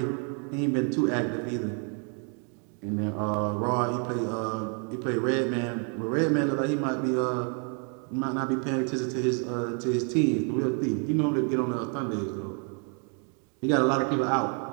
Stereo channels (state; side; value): quieter; left; 39.7 dB